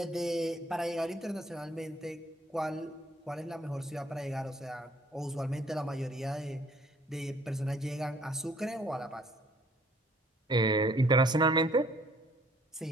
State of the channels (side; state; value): both; normal; correlation 0.60